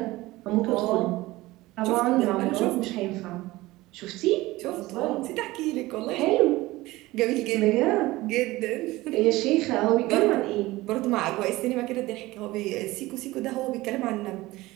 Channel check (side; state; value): left; quieter; 19.0 dB